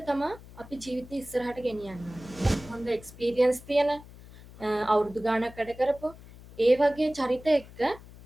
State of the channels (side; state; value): left; noise; hum, 19 dB below the sound